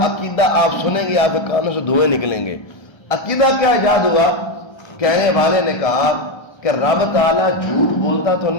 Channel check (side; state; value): right; late; 1.3 ms